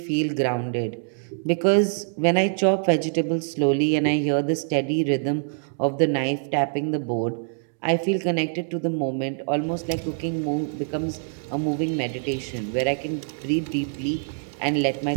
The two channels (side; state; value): left; silent; digital silence